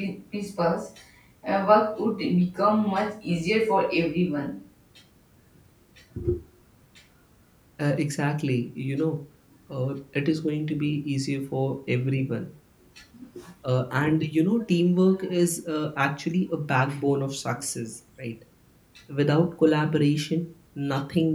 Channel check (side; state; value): both; identical; correlation 1.00